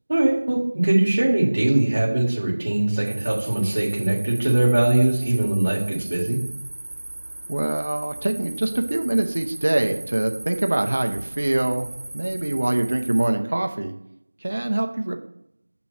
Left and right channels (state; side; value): inverted; both; correlation -1.00